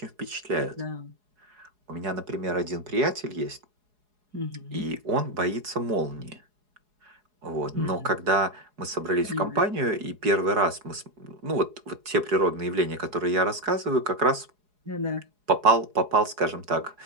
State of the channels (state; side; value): late; left; 4.8 ms